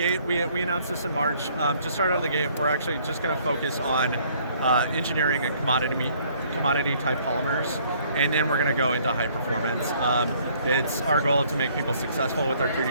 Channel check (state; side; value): inverted; both; correlation -0.61